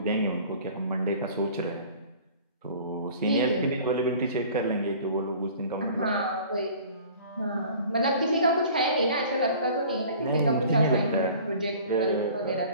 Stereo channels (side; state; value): both; inverted; correlation -0.47